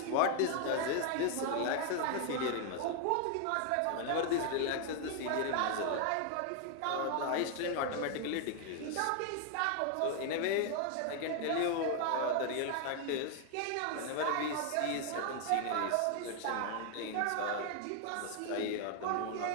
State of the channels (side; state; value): both; different; correlation 0.00